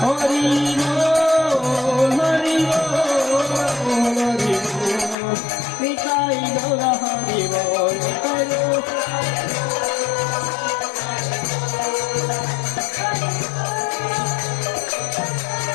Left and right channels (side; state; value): right; drops out; at 5.2 s